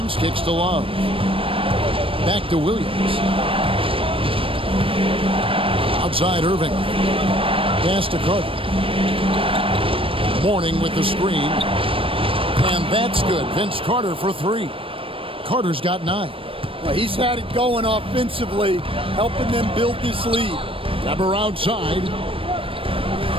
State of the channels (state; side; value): late; left; 0.26 ms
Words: kicks to Love. Back to Williams. Outside Irving. Pass to Carter. Mourning with the screen. And that's good. Vince Carter for 3. Carter's got 9. Well, he's had it going offensively, helping them build this lead. Weber outside.